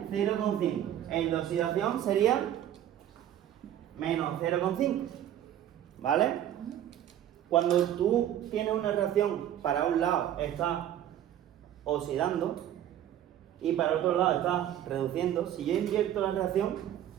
0,5. El de oxidación sería menos 0,5, ¿vale? Cuando tú tienes una reacción, para un lado está oxidando y para otro lado está reduciendo, si yo invierto la reacción,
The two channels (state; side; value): quieter; left; 11.2 dB